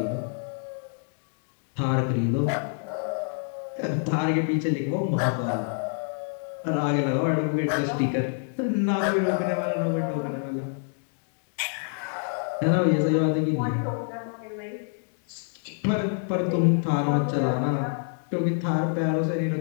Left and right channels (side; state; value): right; silent; 60 dB below the other